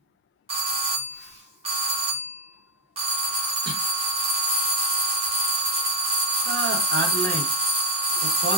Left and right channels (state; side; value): normal; both; correlation 0.02